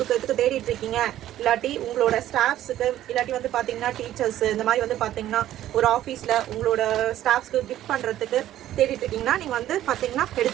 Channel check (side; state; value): left; quieter; 12.9 dB